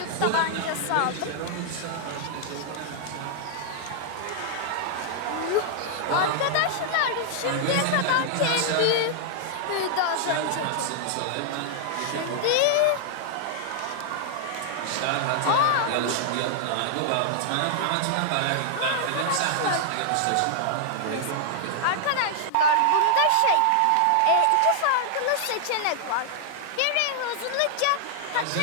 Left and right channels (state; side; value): different; both; correlation -0.01